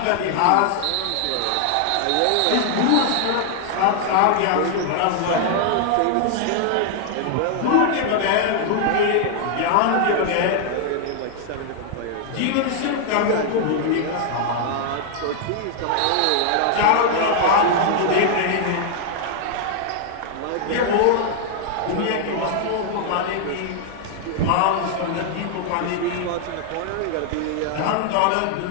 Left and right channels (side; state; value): both; different; correlation 0.00